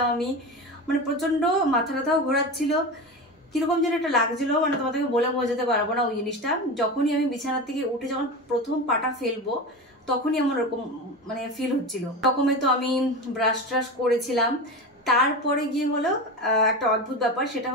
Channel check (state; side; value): normal; both; correlation 0.25